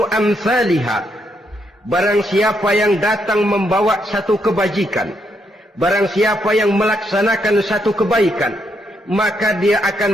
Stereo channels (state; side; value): normal; both; correlation 0.77